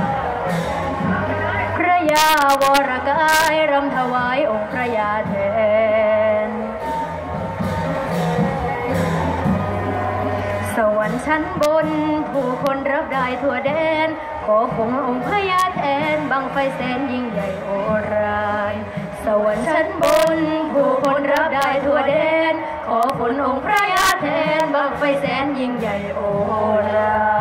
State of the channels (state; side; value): identical; both; correlation 1.00